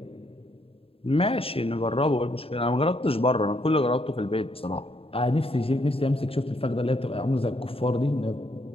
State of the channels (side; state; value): right; late; 0.27 ms